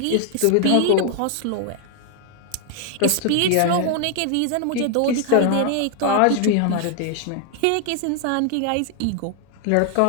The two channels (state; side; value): different; both; correlation 0.00